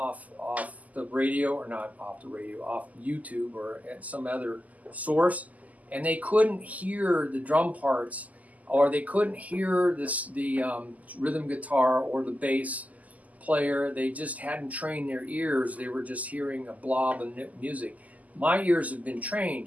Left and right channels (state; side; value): late; left; 0.076 ms